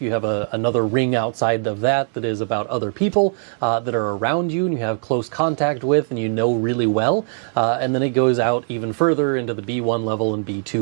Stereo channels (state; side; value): silent; left; 65 dB below the other